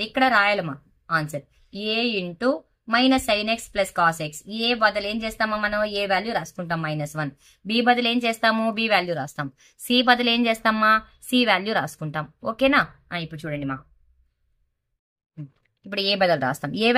ఇక్కడ రాయాలమ్మా answer A into minus sine x plus cos x. A బదులు ఏం చేస్తామో మనం ఏ వాల్యూ రాసుకుంటాం మైనస్ 1. బి బదులు ఏం చేస్తాము బి వాల్యూ రాస్తాం. సి బదులు ఏం చేస్తామా సి వాల్యూ రాసుకుంటాం. ఓకేనా. ఇప్పుడు చూడండి మా ఇప్పుడు ఏ బదులు రాస్తాం. ఏ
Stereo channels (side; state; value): both; identical; correlation 1.00